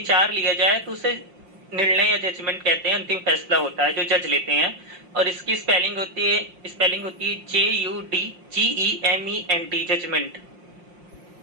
लिया जाए तो उसे निर्णय या जजमेंट कहते हैं, अंतिम फैसला होता है जो जज लेते हैं। और इसकी स्पेलिंग होती है JUDGEMENT, जजमेंट।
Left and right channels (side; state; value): left; late; 5.6 ms